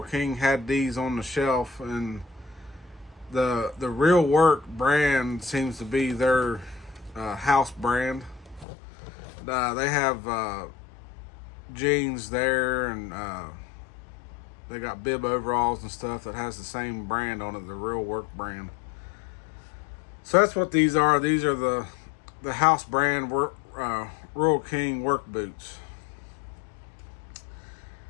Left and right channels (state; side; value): drops out; right; at 8.7 s